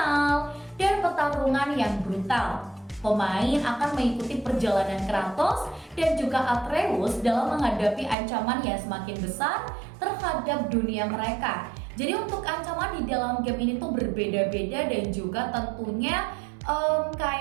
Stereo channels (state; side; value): drops out; left; at 8.2 s